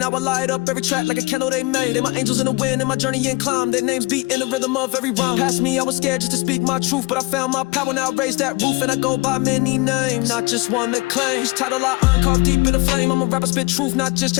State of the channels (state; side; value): quieter; right; 24.4 dB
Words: I light up every track like a candle they made. They my angels in the wind, in my journey and climb. Their names beat in the rhythm of every rhyme. Past me, I was scared just to speak my truth, but I found my power, now I raise that roof. And I go by many names, not just one that claims. Each title I earn, carved deep in the flame. I'm a rapper, spit truth, not just